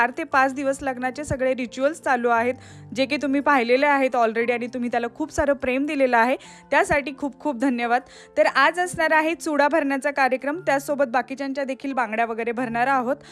ते 5 दिवस लग्नाचे सगळे रिच्युअल्स चालू आहेत, जे की तुम्ही पाहिलेले आहेत ऑलरेडी आणि तुम्ही त्याला खूप सारं प्रेम दिलेलं आहे, त्यासाठी खूप खूप धन्यवाद। तर आज असणार आहे चुडा भरण्याचा कार्यक्रम, त्यासोबत बाकीच्यांच्या देखील बांगड्या वगैरे भरणार आहोत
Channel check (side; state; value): both; identical; correlation 1.00